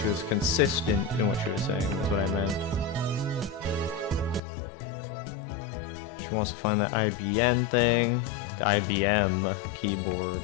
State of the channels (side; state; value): right; drops out; at 4.4 s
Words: was consistent in what she was saying, is what I meant. She wants to find that IBM thing. The IBM keyboard.